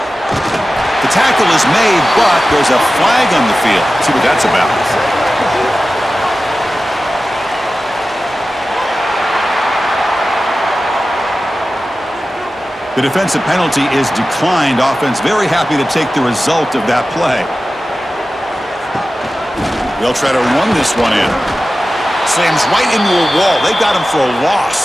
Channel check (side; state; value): both; normal; correlation 0.95